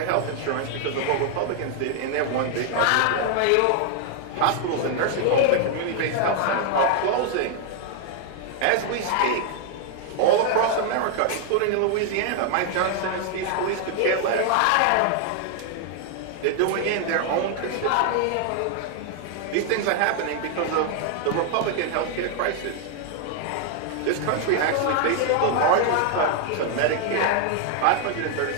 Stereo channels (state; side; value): different; both; correlation 0.00